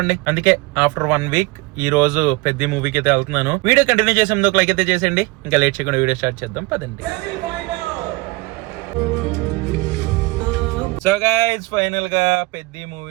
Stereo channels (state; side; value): quieter; left; 23.5 dB